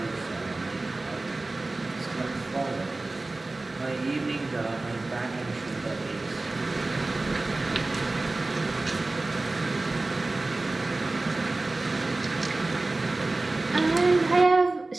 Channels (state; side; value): quieter; left; 3.1 dB